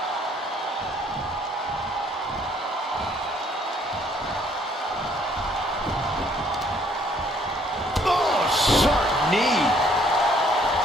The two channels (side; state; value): both; normal; correlation 0.63